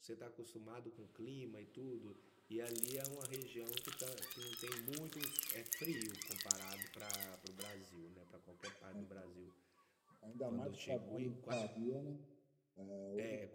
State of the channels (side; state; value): both; identical; correlation 1.00